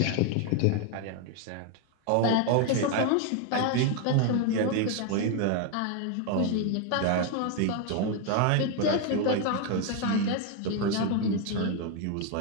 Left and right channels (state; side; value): different; both; correlation 0.01